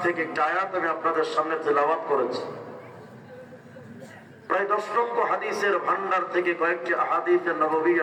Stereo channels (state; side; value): identical; both; correlation 1.00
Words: থেকে একটা আয়াত আমি আপনাদের সামনে তেলাওয়াত করেছি। প্রায় 10 লক্ষ হাদিসের ভান্ডার থেকে কয়েকটি আহাদিসে